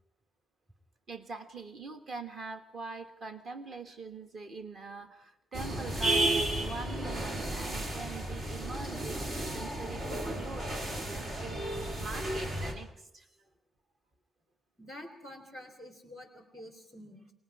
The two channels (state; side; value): normal; both; correlation 0.77